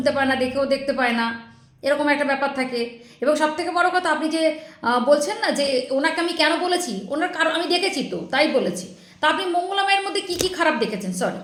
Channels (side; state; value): both; identical; correlation 1.00